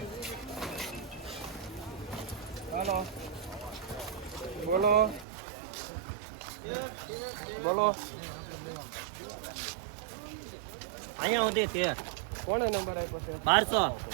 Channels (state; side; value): drops out; left; at 5.2 s